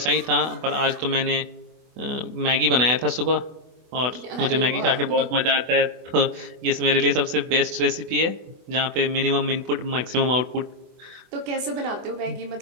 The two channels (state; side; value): late; left; 24 ms